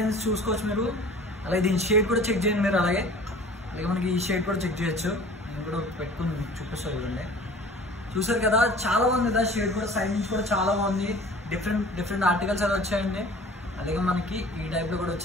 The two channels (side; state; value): both; normal; correlation 0.46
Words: చూసుకోవచ్చు మీరు. అలాగే దీని షేడ్ కూడా చెక్ చేయండి మీరు. అలాగే మనకి ఈ షేడ్ కూడా చెక్ చేయొచ్చు. నేను కూడా పెట్టుకుని చూపిస్తాను చూడండి. చూసారు కదా, చాలా బాగుంది కదా షేడ్ కూడా. సైడ్ నుంచి కూడా చాలా బాగుంది. డిఫరెంట్ ఆర్టికల్స్ అయితే వచ్చాయండి. అలాగే మనకి ఈ టైప్ లో కూడా